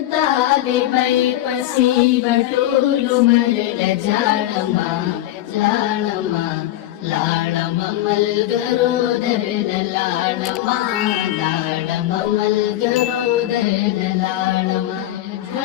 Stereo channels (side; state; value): right; quieter; 14.2 dB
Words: طالبای پسې بټول عمر لجاړما لاړما لاړما ملګرو درنه لاړما داړما ملګرو درنه لاړما